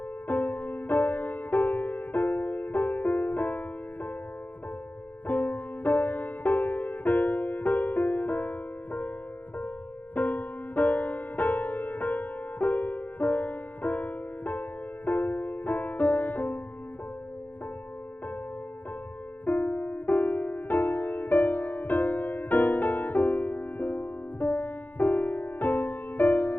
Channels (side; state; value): right; late; 0.084 ms